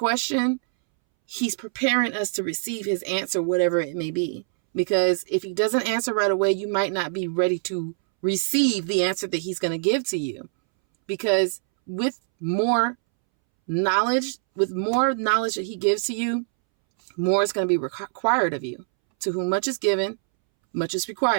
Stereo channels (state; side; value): silent; left; 62 dB below the other